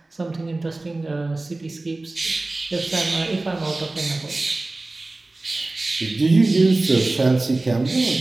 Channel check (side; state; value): left; quieter; 3.0 dB